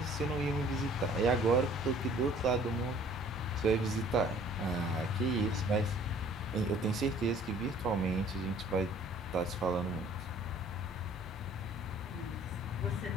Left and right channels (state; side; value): normal; both; correlation 0.54